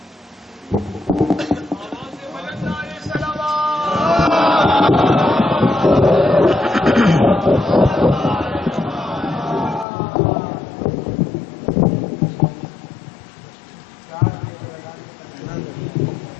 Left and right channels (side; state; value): right; drops out; at 9.9 s